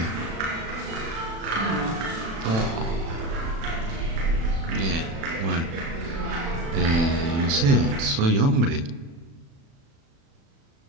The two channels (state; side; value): late; left; 36 ms